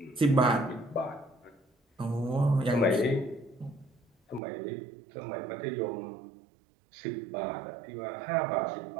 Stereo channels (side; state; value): left; drops out; at 4.4 s